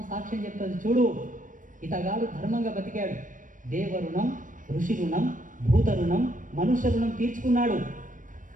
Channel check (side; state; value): left; late; 0.38 ms